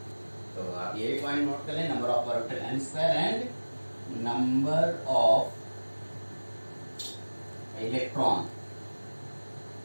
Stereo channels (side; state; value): both; inverted; correlation -1.00